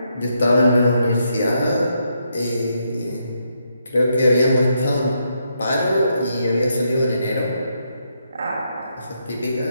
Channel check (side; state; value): both; inverted; correlation -0.79